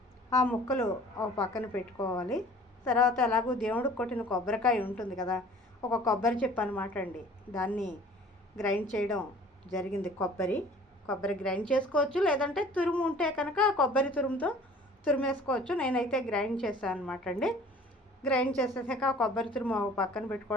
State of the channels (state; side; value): normal; both; correlation 0.49